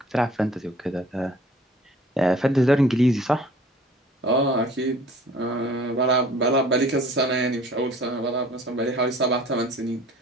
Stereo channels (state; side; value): normal; both; correlation 0.50